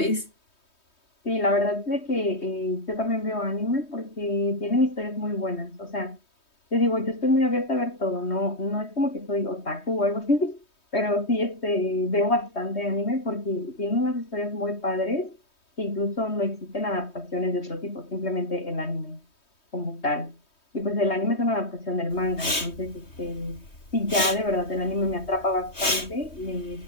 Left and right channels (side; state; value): right; late; 3.2 ms